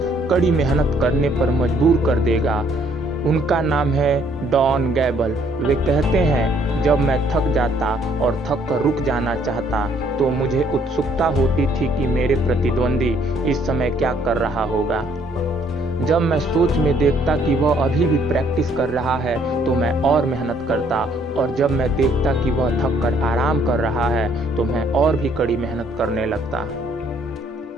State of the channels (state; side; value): normal; both; correlation 0.65